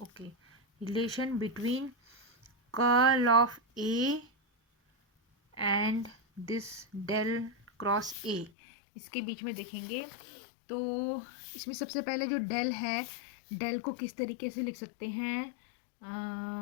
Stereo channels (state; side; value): drops out; right; at 8.5 s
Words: relation between curl of A and this del cross A, इसके बीच में देखेंगे। तो इसमें सबसे पहले जो डेल है, डेल को किस तरीके से लिख सकते हैं,